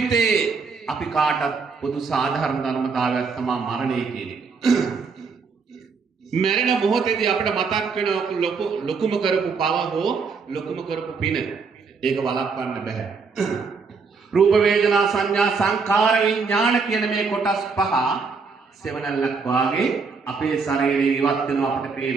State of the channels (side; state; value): left; quieter; 4.9 dB